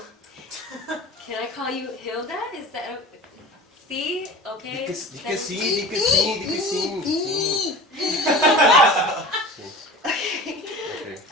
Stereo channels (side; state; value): both; normal; correlation 0.37